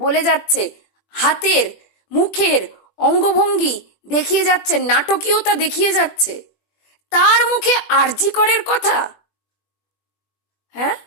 যাচ্ছে, হাতের মুখের অঙ্গভঙ্গি দেখিয়ে যাচ্ছে, নাটকীয়তা দেখিয়ে যাচ্ছে, তার মুখে আরজি করের কথা। হ্যাঁ,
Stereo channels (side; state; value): right; late; 20 ms